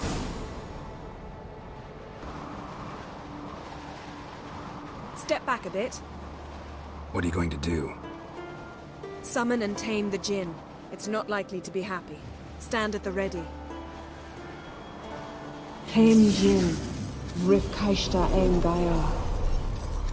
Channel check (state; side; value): identical; both; correlation 1.00